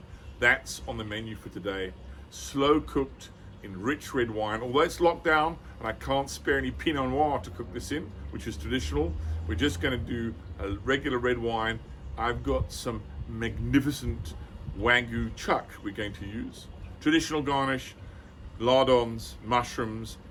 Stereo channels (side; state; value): both; identical; correlation 1.00